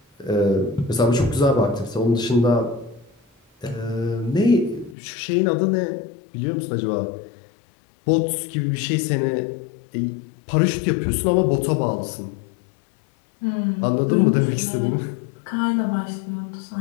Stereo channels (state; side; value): drops out; right; at 5.0 s